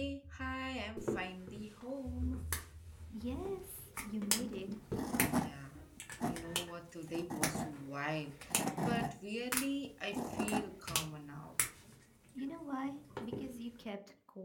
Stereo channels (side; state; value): both; identical; correlation 1.00